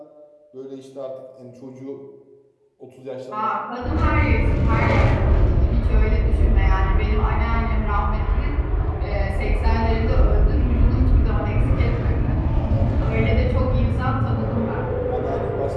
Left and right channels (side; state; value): both; identical; correlation 1.00